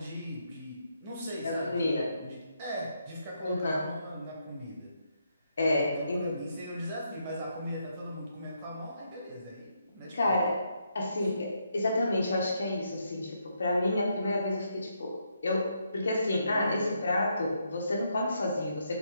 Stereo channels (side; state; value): both; inverted; correlation -0.78